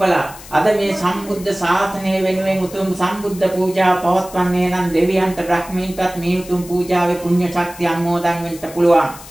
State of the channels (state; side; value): noise; left; hiss, 17 dB below the sound